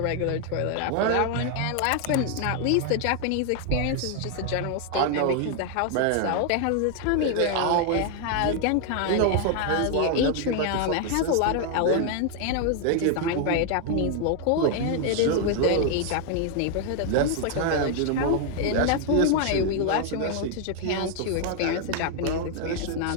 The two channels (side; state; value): both; different; correlation 0.00